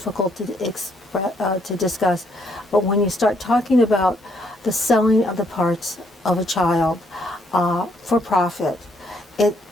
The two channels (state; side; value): normal; both; correlation 0.71